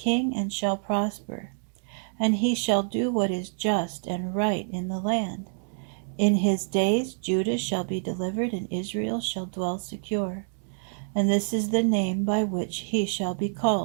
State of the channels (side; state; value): left; silent; digital silence